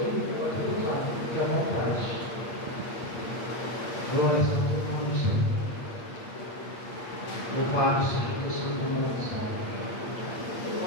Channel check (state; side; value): late; right; 8.6 ms